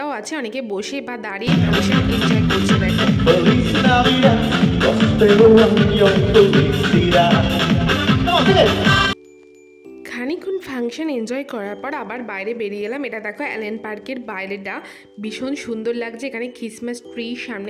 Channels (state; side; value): identical; both; correlation 1.00